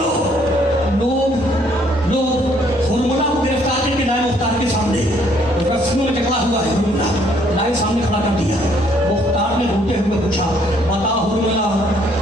लोग हुरमुला को गिरफ्तार करके लाए मुख्तार के सामने। रस्सियों में जकड़ा हुआ है हुरमुला, लाए सामने खड़ा कर दिया। मुख्तार ने रोते हुए पूछा, बता हुरमुला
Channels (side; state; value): both; normal; correlation 0.65